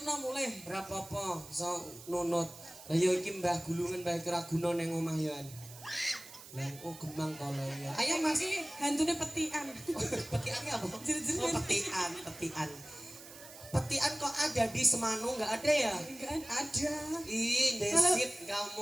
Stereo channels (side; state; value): right; noise; hiss, 17 dB below the sound